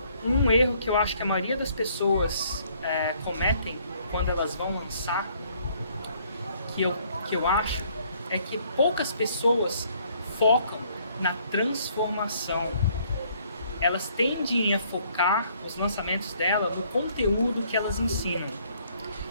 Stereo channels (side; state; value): both; inverted; correlation -0.64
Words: um erro que eu acho que a maioria das pessoas cometem quando elas vão lançar, que eu acho, é que poucas pessoas focam na transformação. Elas tendem a focar os lançamentos dela no conteúdo que elas ensinam.